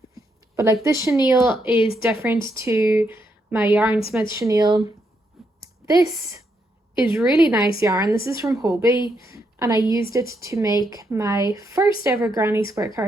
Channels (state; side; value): normal; both; correlation 0.79